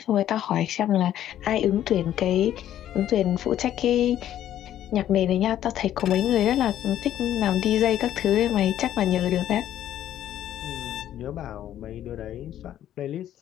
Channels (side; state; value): right; quieter; 11.7 dB